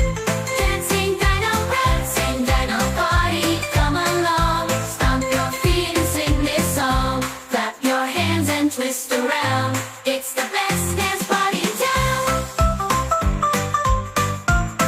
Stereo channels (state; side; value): identical; both; correlation 1.00